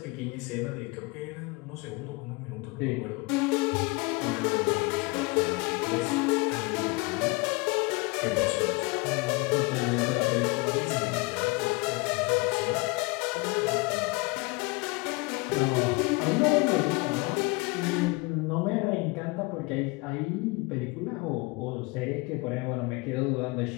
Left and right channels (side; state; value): right; quieter; 26.6 dB